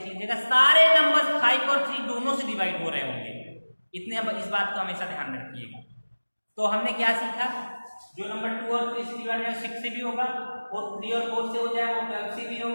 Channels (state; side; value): inverted; both; correlation -1.00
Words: लीजिएगा, सारे नंबर्स 5 और 3 दोनों से डिवाइड हो रहे होंगे। इस बात को हमेशा ध्यान रखिएगा। तो हमने क्या सीखा? जो नंबर 2 और 3 से डिवाइड है 6 से भी होगा, और 3 और 4 से हो जाएगा वो 12 से भी